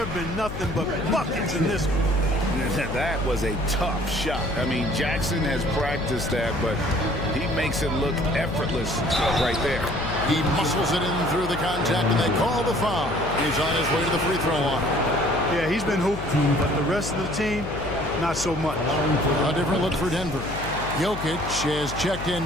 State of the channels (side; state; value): left; noise; hum, 8 dB below the sound